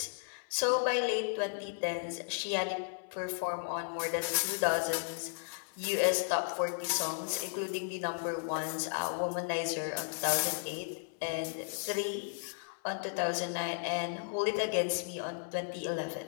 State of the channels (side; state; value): right; silent; 55 dB below the other